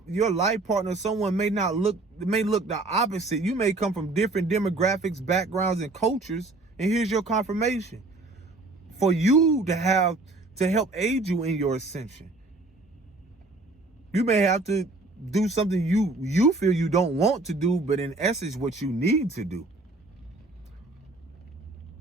life partner, someone may look the opposite. You may come from different demographics, backgrounds, and cultures, and here's your confirmation for you to help aid you in your ascension. You may have to do something you feel you don't want to do, but in essence, what you need to do.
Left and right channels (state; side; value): quieter; left; 3.2 dB